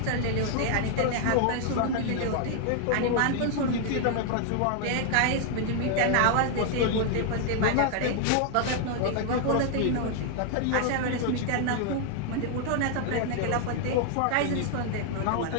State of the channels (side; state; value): both; different; correlation 0.00